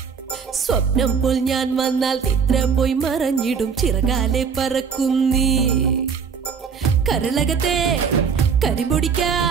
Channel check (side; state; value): left; quieter; 6.3 dB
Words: സ്വപ്നം പോൽ ഞാൻ വന്നാൽ നിദ്ര പോയി മറഞ്ഞിടും ചിറകാലെ പറക്കും നീ. കരളകത്തെ